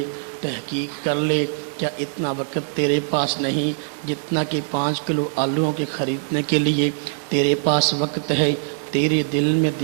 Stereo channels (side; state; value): left; silent; digital silence